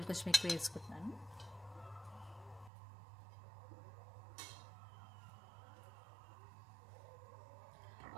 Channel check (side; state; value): left; drops out; at 2.7 s